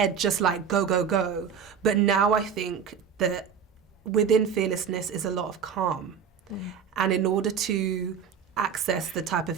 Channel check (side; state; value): left; quieter; 7.1 dB